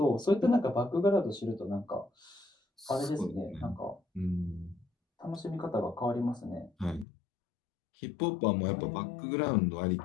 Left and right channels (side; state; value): right; drops out; at 7.1 s